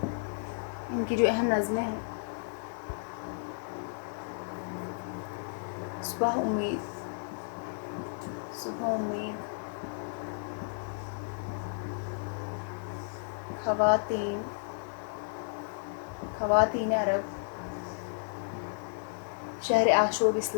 ان کی جو اہم نظمیں ہیں: صبح امید، صبح امید، خواتین، خواتین عرب، شہر آشوب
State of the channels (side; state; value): right; silent; digital silence